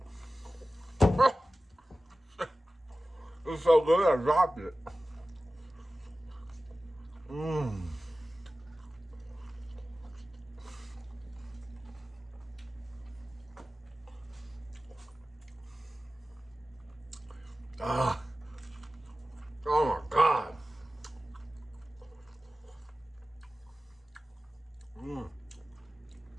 It's so good, I dropped it. Mmm. Ah. Oh my God. Mmm.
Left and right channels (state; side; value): normal; both; correlation 0.96